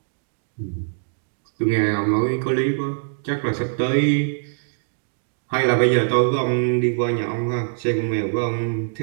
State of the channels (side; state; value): left; silent; digital silence